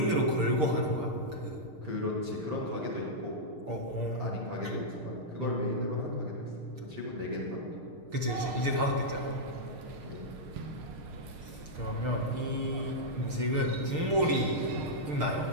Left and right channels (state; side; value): late; left; 6.6 ms